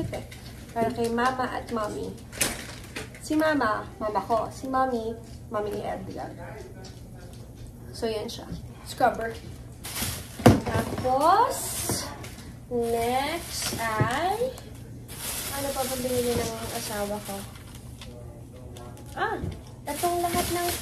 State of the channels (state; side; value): identical; both; correlation 1.00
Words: eh. Para kay mama at mommy. Si mama ko. Si mommy ni Edgar. So, yan siya. Scrubber. Tapos, next ay, ano pa ba binili ng asawa ko? Itong lahat ng